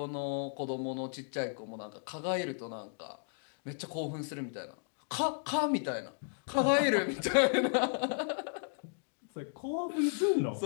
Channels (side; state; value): right; silent; digital silence